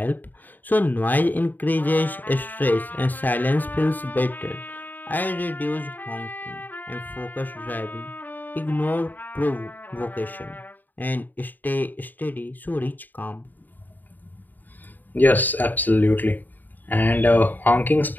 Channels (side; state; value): right; late; 0.087 ms